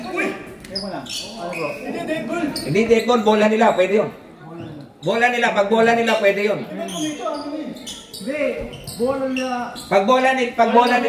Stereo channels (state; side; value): identical; both; correlation 1.00